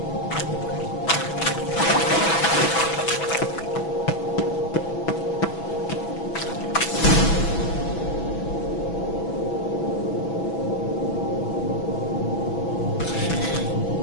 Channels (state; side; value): late; right; 6.1 ms